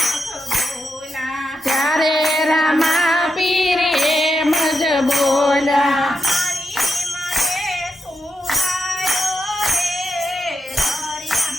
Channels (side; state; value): both; normal; correlation 0.86